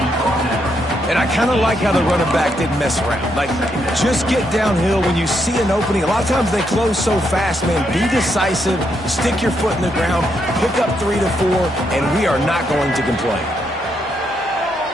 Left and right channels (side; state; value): both; normal; correlation 0.78